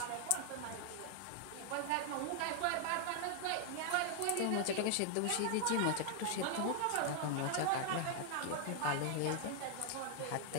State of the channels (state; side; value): different; both; correlation 0.00